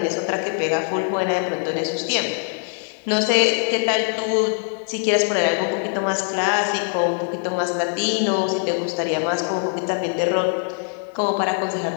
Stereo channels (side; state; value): right; silent; 60 dB below the other